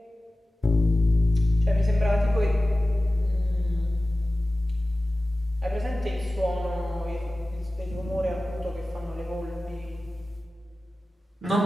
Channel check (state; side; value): normal; both; correlation 0.96